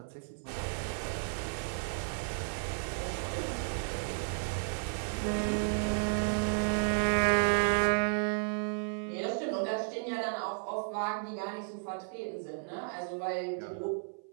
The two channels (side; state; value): left; silent; 55 dB below the other